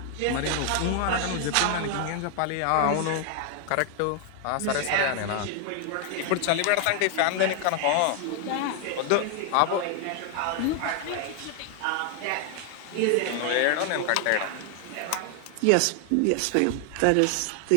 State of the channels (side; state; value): both; different; correlation 0.00